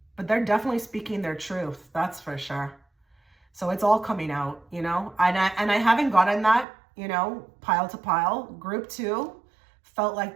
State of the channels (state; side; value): drops out; left; at 6.7 s